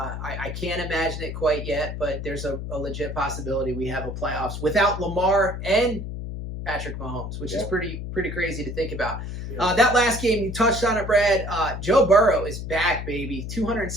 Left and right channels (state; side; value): noise; left; hum, 7 dB below the sound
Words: can't imagine it quite yet, but there's a legit possibility we have a playoffs without Lamar and Patrick Mahomes, which is pretty crazy to think about. Yeah. That last game, you touched on it, Brad. Joe Burrow is back, baby.